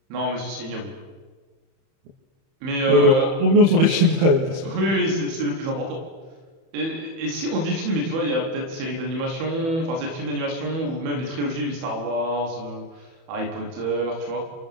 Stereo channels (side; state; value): left; late; 30 ms